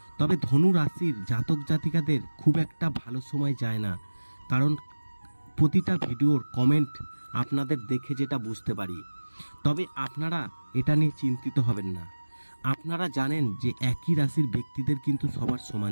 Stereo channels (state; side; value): inverted; both; correlation -1.00